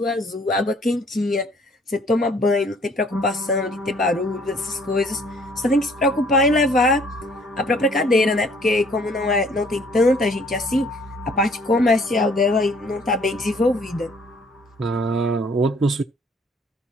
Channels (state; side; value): normal; both; correlation 0.60